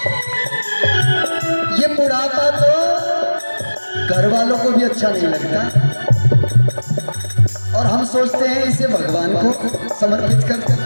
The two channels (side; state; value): both; inverted; correlation -1.00